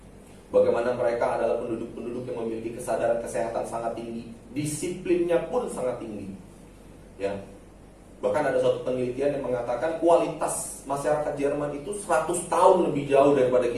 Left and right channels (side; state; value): both; identical; correlation 1.00